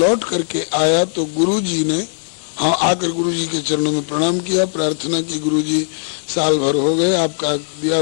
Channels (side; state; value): right; silent; digital silence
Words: करके आया तो गुरुजी ने आकर गुरुजी के चरणों में प्रणाम किया, प्रार्थना की, गुरुजी साल भर हो गए आपका दिया